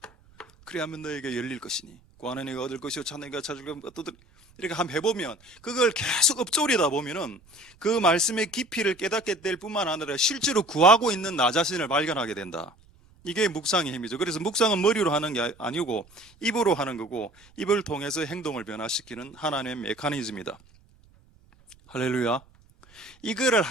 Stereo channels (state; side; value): noise; right; rumble, 29 dB below the sound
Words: 그래야만 너에게 열릴 것이니, 구하는 이가 얻을 것이요 찾는 이가 찾을 것이요 두드리. 이렇게 한번 해보면, 그걸 계속 읊조리다 보면은 그 말씀의 깊이를 깨닫게 될 뿐만 아니라 실제로 구하고 있는 나 자신을 발견하게 된다. 이게 묵상의 힘이죠. 그래서 묵상은 머리로 하는 게 아니고 입으로 하는 거고, 입을 통해서 행동을 변화시키는 하나님의 메커니즘이다. 할렐루야. 이거를